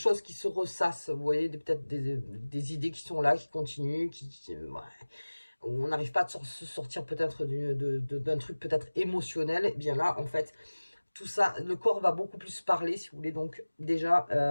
qui se ressassent, vous voyez, peut-être des idées qui sont là, qui continuent, ouais, on n'arrive pas à se sortir peut-être d'un truc peut-être émotionnel. Et bien là, en fait, tout ça, le corps va beaucoup plus parler, si vous voulez. Donc déjà,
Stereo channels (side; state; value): both; inverted; correlation -1.00